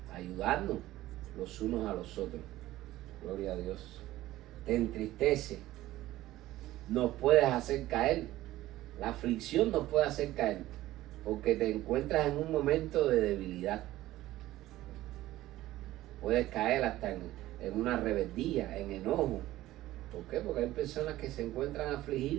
ayudarnos los unos a los otros. Gloria a Dios. Te entristece, nos puedes hacer caer. La aflicción nos puede hacer caer, porque te encuentras en un momento de debilidad. Puedes caer hasta en una rebeldía, en enojo. ¿Por qué? Porque hay personas que se encuentran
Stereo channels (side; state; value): left; quieter; 15.7 dB